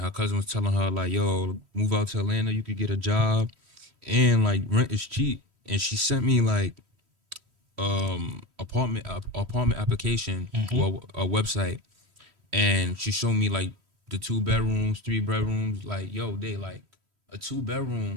her cousin was telling her like, yo, move out to Atlanta. You could get a job, and like rent is cheap." And she sent me like apartment application Mm-hmm. or a website, and she showed me like the 2 bedrooms, 3 bedrooms. Like, yo, they like a 2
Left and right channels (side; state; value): left; late; 3.1 ms